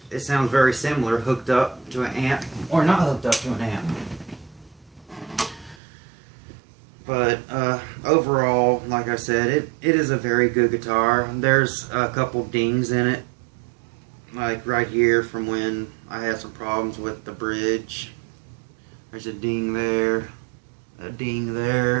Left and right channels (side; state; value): left; drops out; at 5.8 s